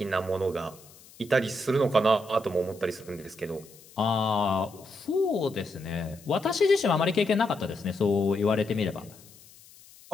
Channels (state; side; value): noise; left; hiss, 23 dB below the sound